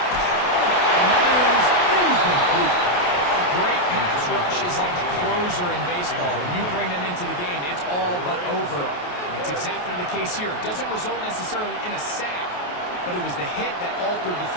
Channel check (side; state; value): right; late; 28 ms